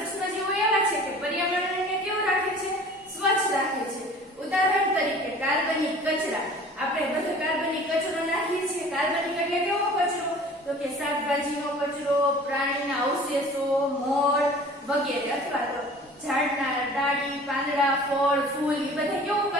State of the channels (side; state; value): both; normal; correlation 0.45